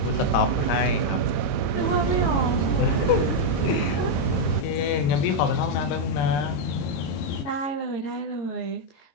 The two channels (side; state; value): right; late; 22 ms